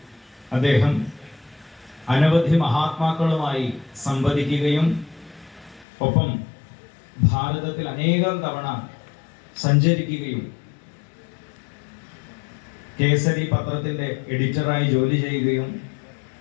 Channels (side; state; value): right; drops out; at 5.9 s